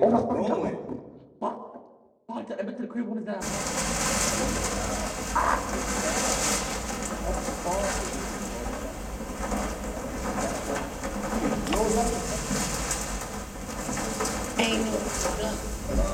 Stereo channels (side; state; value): both; identical; correlation 1.00